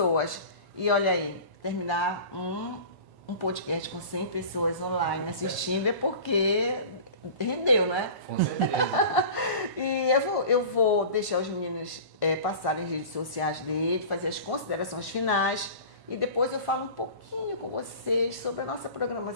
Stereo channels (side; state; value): left; late; 1.1 ms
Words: E olha aí, terminar um podcast com 100 pessoas online assistindo é porque rendeu, né? Com certeza. E eu vou deixar os meninos passarem as redes sociais dele, fazer as considerações finais e depois eu falo um pouquinho com vocês sobre a nossa